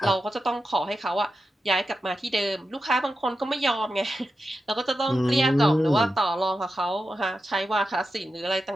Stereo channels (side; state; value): both; normal; correlation 0.90